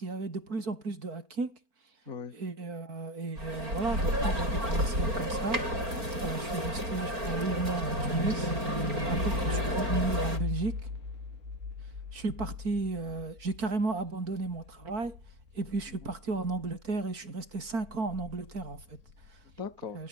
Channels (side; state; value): left; late; 4.4 ms